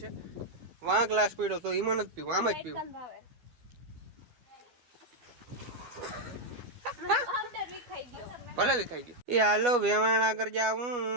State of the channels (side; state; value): left; late; 12 ms